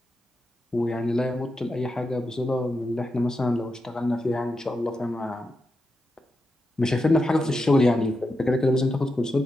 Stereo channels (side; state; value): both; normal; correlation 0.88